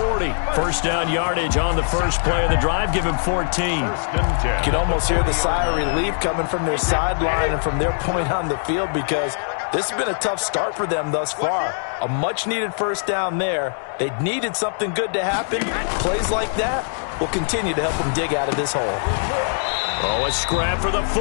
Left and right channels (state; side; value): silent; right; digital silence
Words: First down yardage on the first play of the drive. Give him 14. You can almost hear the sigh of relief coming from their sideline and from their point on the field, because this has been a tough start for them thus far. A much-needed first down there. They needed something good to happen. Plays like that will continue to help them dig out of this hole. Oh, a scrap for the